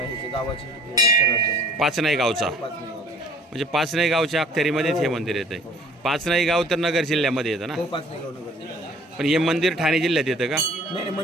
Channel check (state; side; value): normal; both; correlation 0.52